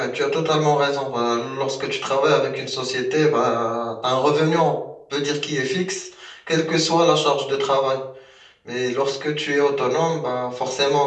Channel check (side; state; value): both; identical; correlation 1.00